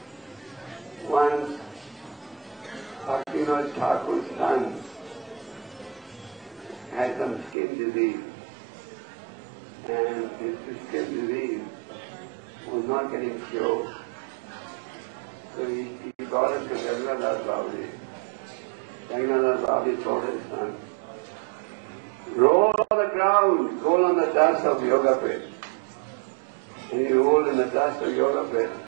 Once, Bhaktivinoda Thakur's son had some skin disease, and his skin disease was not getting cured. So he brought him to Jagannath Babaji. Jagannath Babaji told his son, roll on the ground, roll on the dust of yoga pit. And he rolled in the dust of yoga pit,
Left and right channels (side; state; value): left; drops out; at 7.6 s